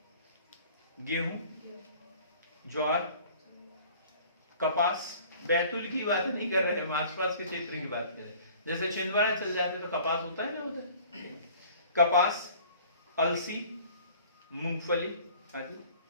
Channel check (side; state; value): both; inverted; correlation -0.50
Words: गेहूं, ज्वार, कपास। बैतूल की बात नहीं कर रहे हैं, आसपास के क्षेत्र की बात कर रहे हैं। जैसे छिंदवाड़ा चल जाते तो कपास होता है ना उधर। कपास, अलसी, मूंगफली आदि।